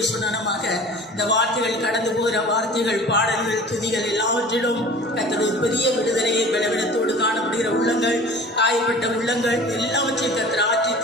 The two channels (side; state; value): both; normal; correlation 0.43